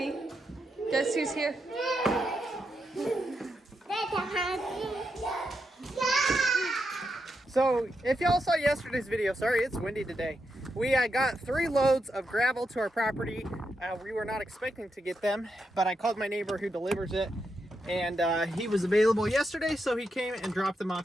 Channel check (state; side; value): normal; both; correlation 0.84